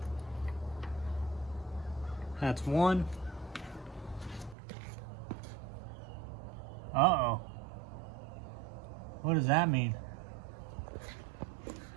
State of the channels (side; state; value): left; drops out; at 4.5 s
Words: That's 1. Uh-oh. What does that mean?